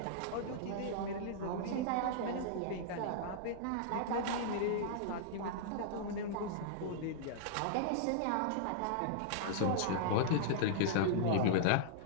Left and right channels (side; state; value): both; different; correlation -0.01